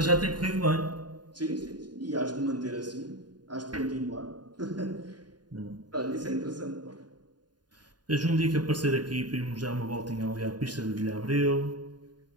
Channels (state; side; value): late; left; 0.70 ms